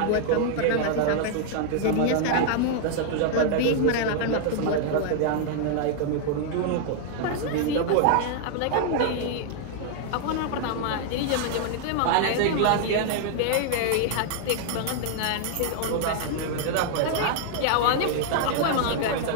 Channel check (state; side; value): different; both; correlation 0.00